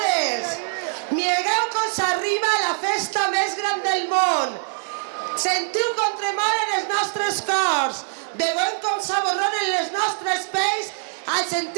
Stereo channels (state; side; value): silent; left; 55 dB below the other